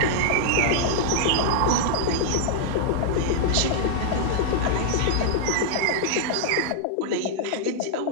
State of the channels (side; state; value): both; different; correlation -0.01